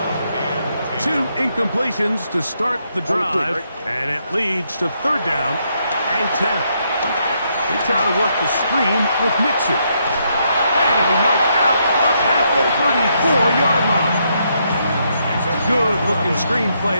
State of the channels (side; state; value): both; inverted; correlation -0.76